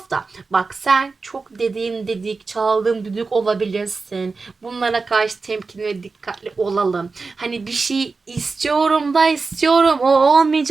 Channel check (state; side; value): quieter; left; 4.2 dB